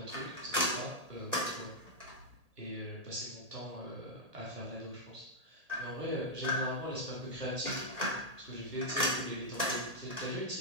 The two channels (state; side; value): late; left; 1.8 ms